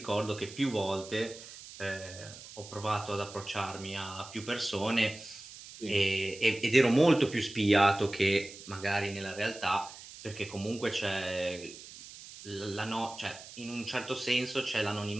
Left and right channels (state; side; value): noise; right; hiss, 15 dB below the sound